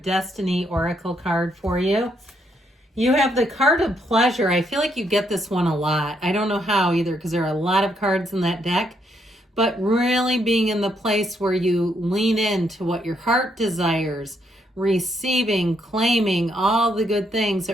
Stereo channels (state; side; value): normal; both; correlation 0.75